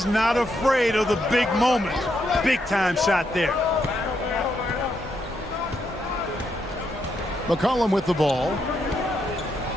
not afraid of the big moment. Big time shot there. McCollum with the ball.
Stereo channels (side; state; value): both; normal; correlation 0.79